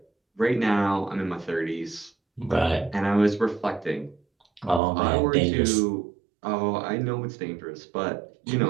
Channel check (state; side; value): drops out; left; at 4.8 s